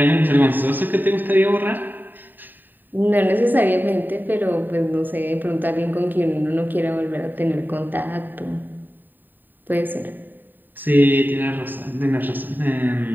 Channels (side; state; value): left; late; 0.091 ms